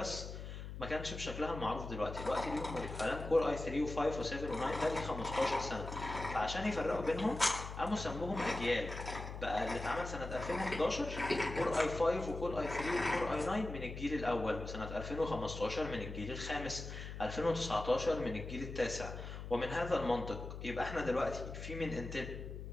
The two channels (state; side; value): noise; left; hum, 8 dB below the sound